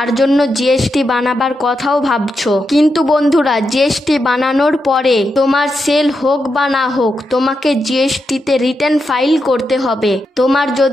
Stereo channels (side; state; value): both; normal; correlation 0.86